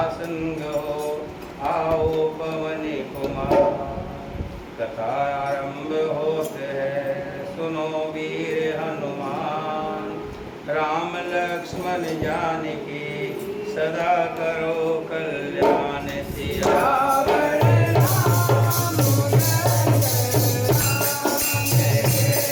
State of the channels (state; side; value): identical; both; correlation 1.00